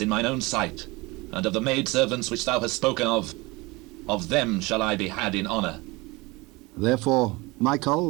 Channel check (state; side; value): quieter; left; 23.6 dB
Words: in mine own sight, and of the maidservants which thou hast spoken of them shall I be had in honour. Therefore